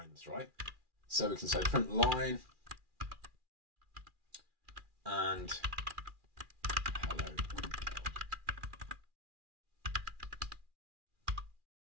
right? So we can say print line and hello.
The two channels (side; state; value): left; late; 2.4 ms